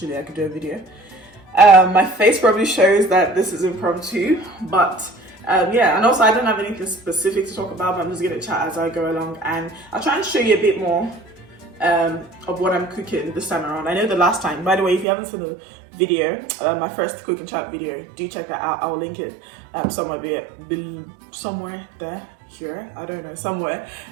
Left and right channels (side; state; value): left; drops out; at 15.1 s